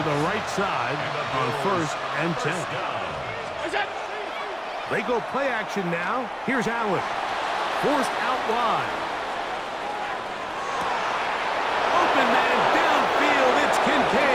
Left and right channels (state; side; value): identical; both; correlation 1.00